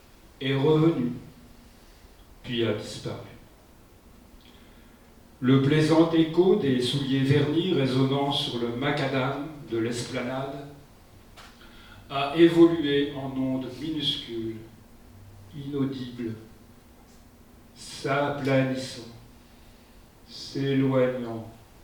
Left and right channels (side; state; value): both; identical; correlation 1.00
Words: est revenue, puis a disparu. Le plaisant écho des souliers vernis résonnant sur le macadam de l'esplanade a évolué en ondes minuscules, inaudibles, s'aplanissant, s'éloignant